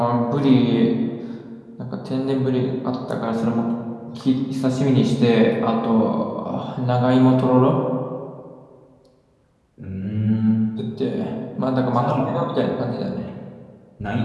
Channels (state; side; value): identical; both; correlation 1.00